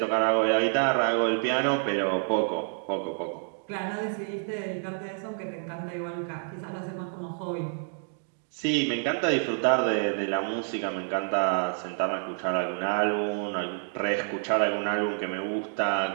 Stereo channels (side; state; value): left; silent; digital silence